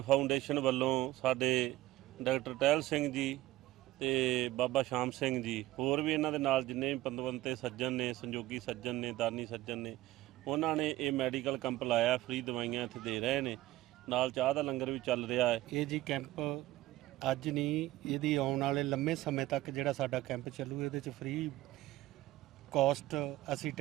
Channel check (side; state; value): left; quieter; 16.6 dB